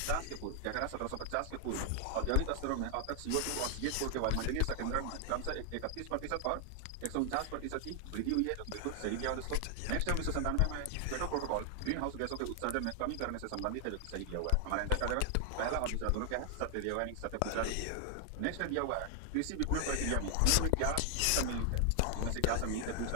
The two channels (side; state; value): both; different; correlation 0.00